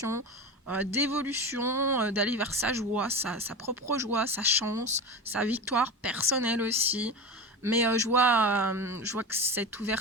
d'évolution, d'aller vers sa joie, sa propre joie, sa chance, sa victoire personnelle aussi. Mais je vois que cette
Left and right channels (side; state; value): both; normal; correlation 0.25